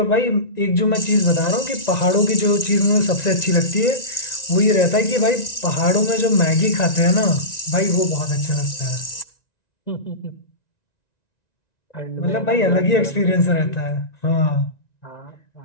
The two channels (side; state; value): right; late; 1.9 ms